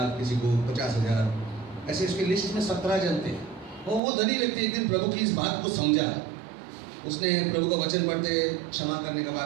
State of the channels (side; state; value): left; drops out; at 4.0 s